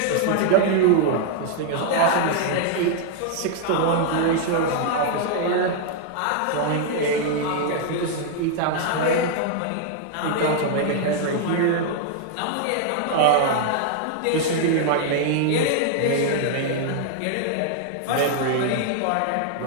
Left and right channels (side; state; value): both; different; correlation 0.00